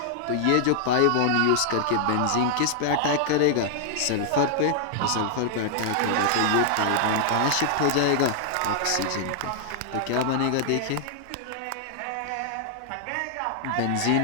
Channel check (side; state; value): both; different; correlation -0.01